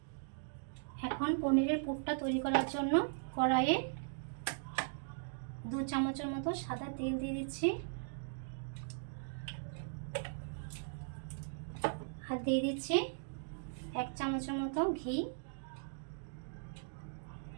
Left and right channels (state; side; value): silent; left; digital silence